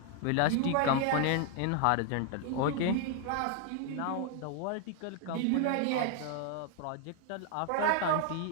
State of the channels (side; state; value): both; different; correlation 0.00